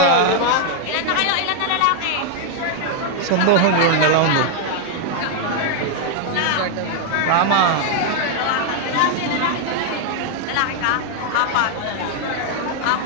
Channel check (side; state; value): both; different; correlation 0.00